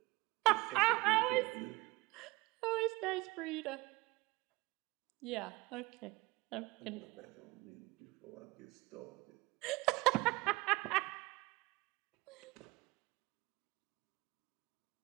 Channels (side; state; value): left; quieter; 22.4 dB